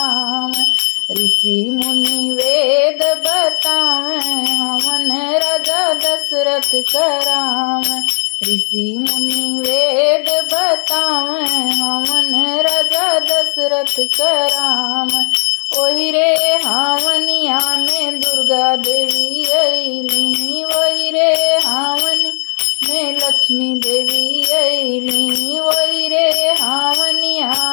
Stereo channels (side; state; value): right; silent; digital silence